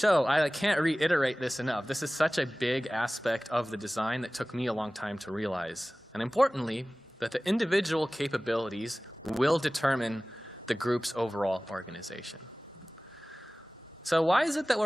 I can't reiterate this enough. This is such a big aspect of the design that took me a long time to realize. And importantly, that the individual capabilities will determine the group's overall organization. So why is it that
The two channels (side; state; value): both; normal; correlation 0.98